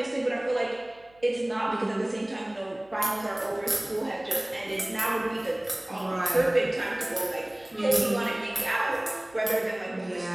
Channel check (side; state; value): right; noise; hum, 29 dB below the sound